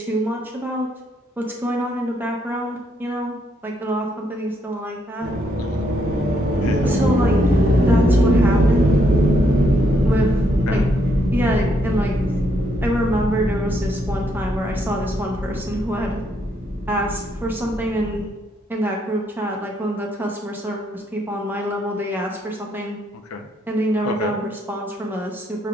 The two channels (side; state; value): both; normal; correlation 0.74